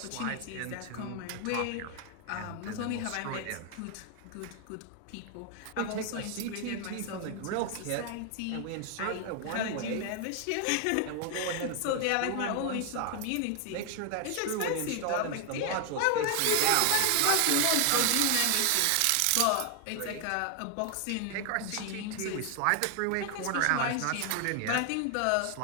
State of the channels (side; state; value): both; different; correlation 0.01